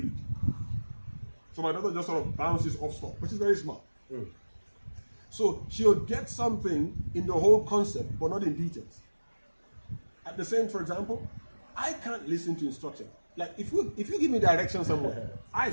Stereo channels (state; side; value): inverted; both; correlation -1.00